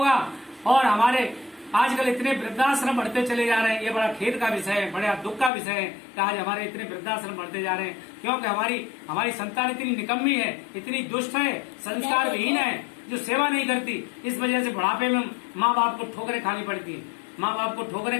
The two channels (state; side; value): drops out; right; at 5.5 s